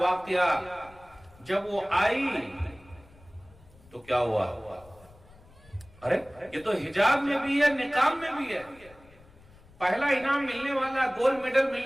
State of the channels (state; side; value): noise; left; rumble, 25 dB below the sound